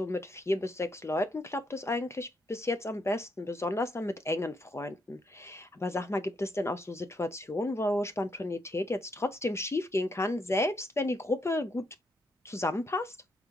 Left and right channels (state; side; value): normal; both; correlation 0.76